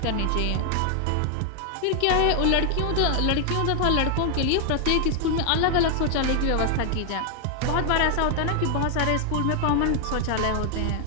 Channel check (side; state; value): both; different; correlation 0.00